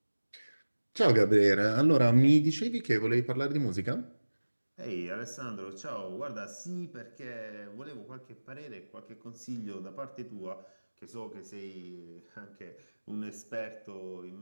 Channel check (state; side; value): inverted; both; correlation -1.00